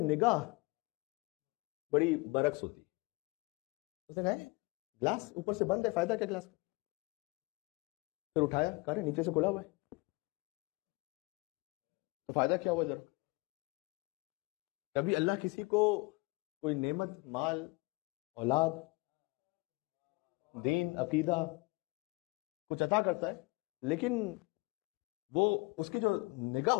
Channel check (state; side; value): quieter; right; 25.4 dB